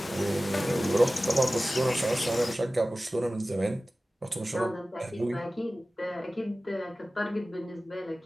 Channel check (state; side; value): normal; both; correlation 0.97